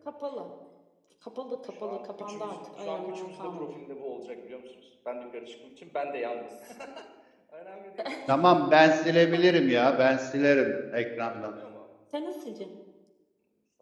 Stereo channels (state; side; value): identical; both; correlation 1.00